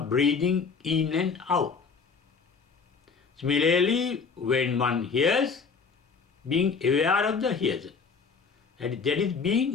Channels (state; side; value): quieter; right; 5.3 dB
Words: breathing in and out. Similarly, when one hears, being aware of the hearer. That is